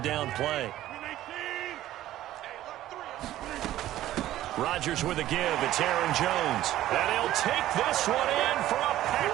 down play. Rodgers with a give. It's Aaron Jones. And he'll take this one in for a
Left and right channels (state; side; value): quieter; left; 13.9 dB